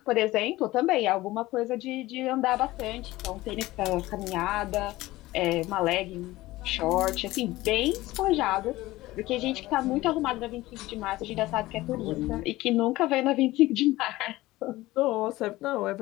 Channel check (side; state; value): right; quieter; 18.1 dB